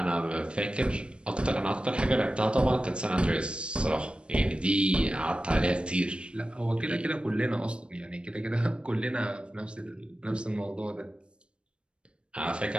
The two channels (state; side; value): late; left; 0.056 ms